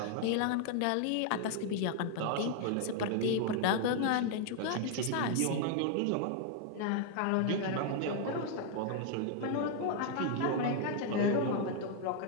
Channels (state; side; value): different; both; correlation 0.00